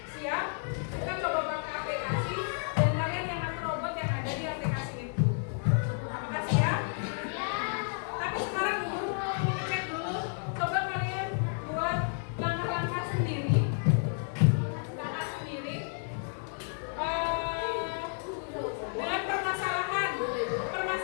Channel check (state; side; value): silent; right; 57 dB below the other